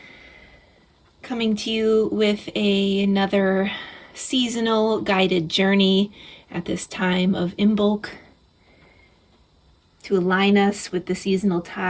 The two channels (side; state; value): both; identical; correlation 1.00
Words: coming to you with another seasonal guided journey at this time of Imbolc to align us with the seasonal